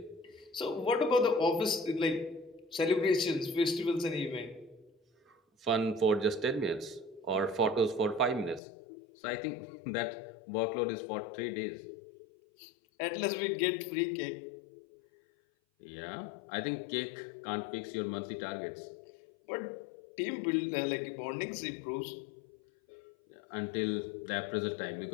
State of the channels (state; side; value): drops out; right; at 8.6 s